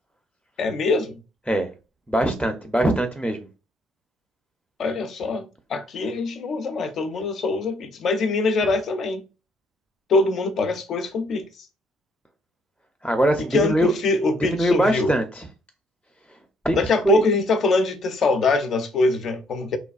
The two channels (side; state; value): both; normal; correlation 0.68